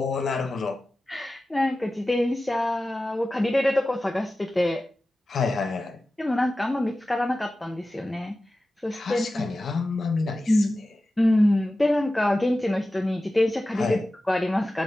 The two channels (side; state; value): both; normal; correlation 0.95